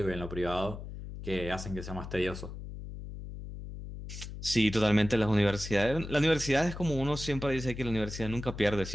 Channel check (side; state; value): left; noise; hum, 10 dB below the sound